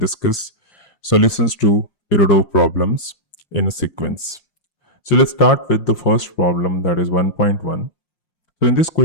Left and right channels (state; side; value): late; right; 5.6 ms